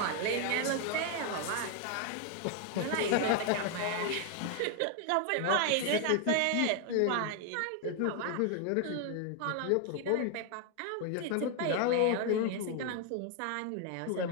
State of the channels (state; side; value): different; both; correlation 0.01